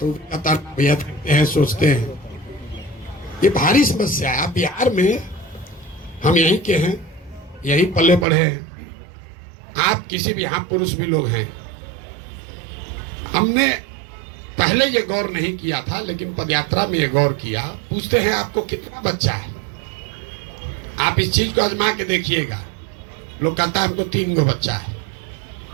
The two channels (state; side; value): drops out; left; at 8.2 s